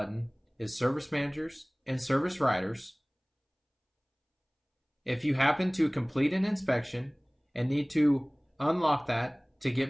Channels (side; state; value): both; identical; correlation 1.00